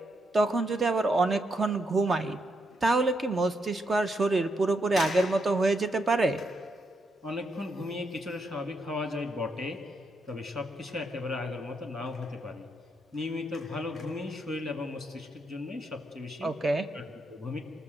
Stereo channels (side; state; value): both; normal; correlation 0.79